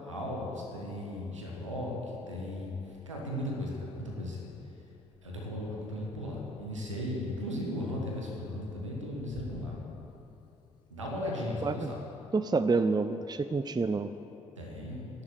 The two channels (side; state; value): both; normal; correlation 0.65